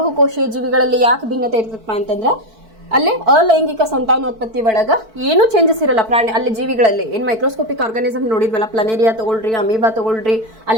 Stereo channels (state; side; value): late; left; 4.5 ms